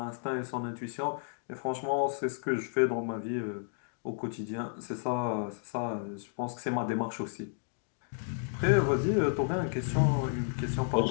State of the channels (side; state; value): right; silent; digital silence